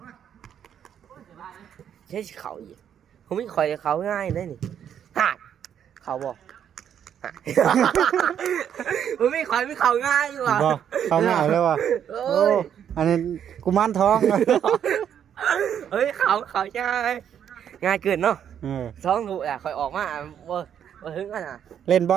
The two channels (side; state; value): left; quieter; 9.0 dB